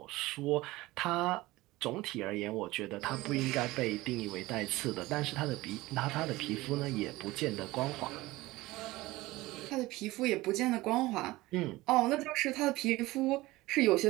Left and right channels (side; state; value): left; quieter; 19.2 dB